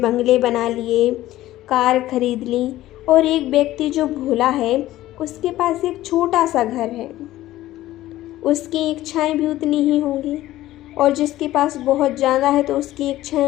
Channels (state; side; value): quieter; right; 15.2 dB